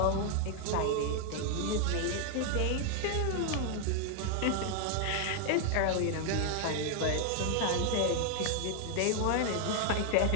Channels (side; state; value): both; different; correlation 0.00